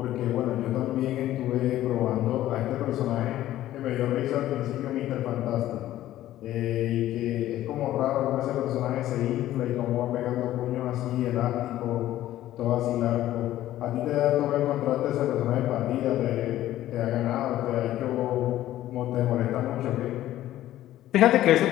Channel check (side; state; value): right; quieter; 13.8 dB